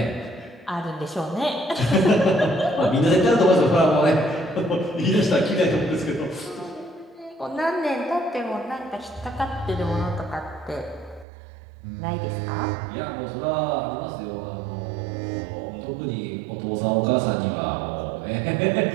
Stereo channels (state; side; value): drops out; left; at 11.2 s